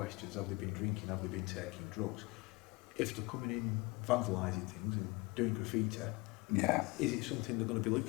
Have they been drinking? Have they been taking drugs? If they're coming in vandalising things and doing graffiti, Yeah. is it something they're going to be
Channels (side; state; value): right; quieter; 25.0 dB